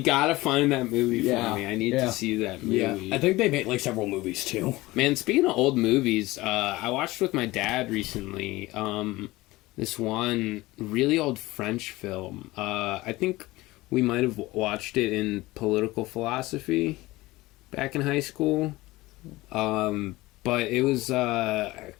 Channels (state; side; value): quieter; right; 19.6 dB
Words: gotta find that movie for me. I need to see that movie. Yeah. I think they made like several movies too. Man, speaking of old movies, I watched with my dad recently this one really old French film. I think we might have watched it in political philosophy back in high school. But it was God,